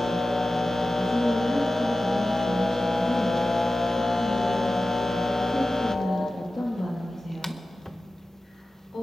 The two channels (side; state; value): both; normal; correlation 0.95